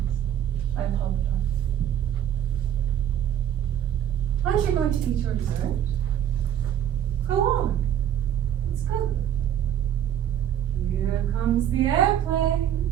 I apologize. Aren't you going to eat your dessert? Go on. It's good. Here comes the airplane.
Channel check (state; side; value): quieter; left; 10.5 dB